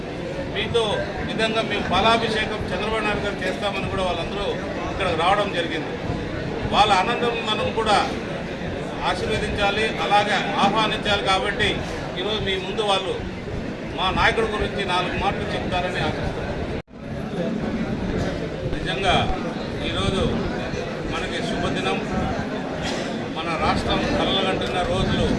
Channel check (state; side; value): identical; both; correlation 1.00